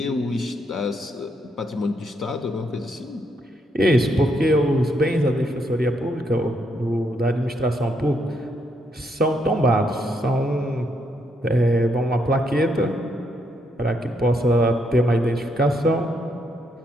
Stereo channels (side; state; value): both; normal; correlation 0.76